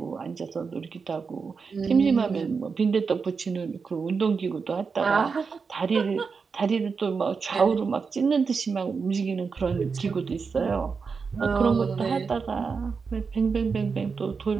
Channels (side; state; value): left; quieter; 5.2 dB